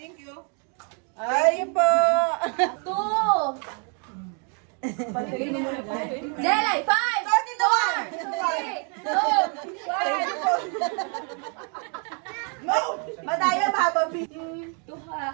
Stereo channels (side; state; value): left; quieter; 39.2 dB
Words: Thank you. Ay po. 2. Jelay, 5. 4. 3. 2. 1. Madaya mababi.